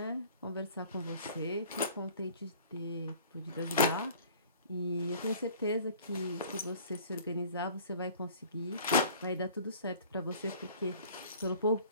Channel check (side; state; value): both; inverted; correlation -0.50